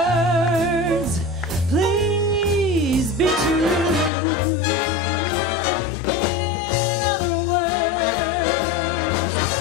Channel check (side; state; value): right; drops out; at 4.1 s